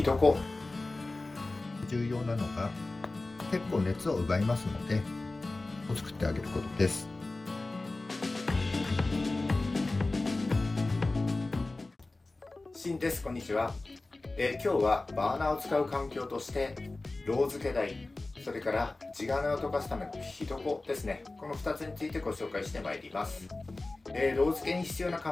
床、重要なのが結構熱を奪いますので作ってあげることです。シンです。こんにちは。今日はバーナーを使う環境としてロー付け台、それから地金を溶かすための火床ですね、この2つについてご紹介してまいります。ロー付けに必要な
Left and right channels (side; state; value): right; quieter; 3.1 dB